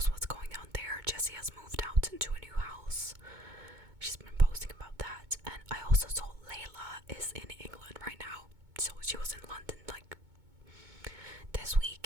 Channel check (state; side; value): late; left; 2.2 ms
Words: what's going on there. Jessie has moved out into a new house. She's been posting about that. And I also saw Layla is in England right now. So she was in London like this